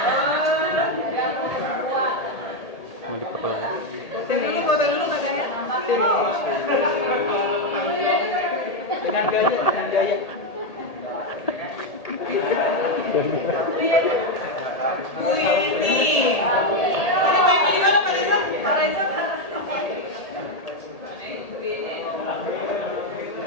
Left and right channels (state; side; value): late; right; 1.8 ms